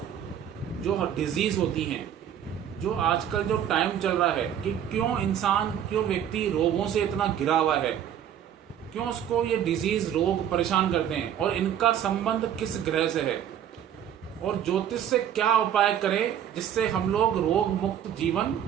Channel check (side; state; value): left; quieter; 9.7 dB